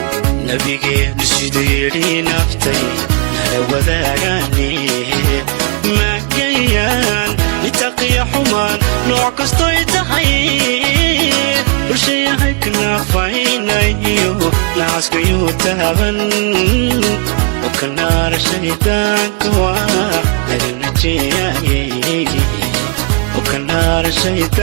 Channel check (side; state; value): left; quieter; 32.3 dB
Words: nabigeenu siduu yidhi naftay nala wadaagaane maagayaan nitaqiya xumaan nooc kastoy tahay bulshayahay kanaafaynayo naaskayuu taaban okanaara shaydaanka waa laga najeeyay okanaara